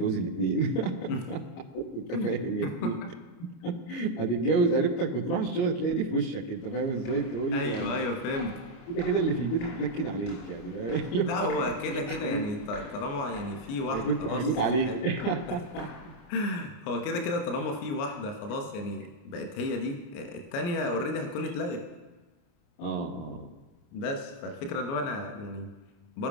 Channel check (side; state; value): right; late; 29 ms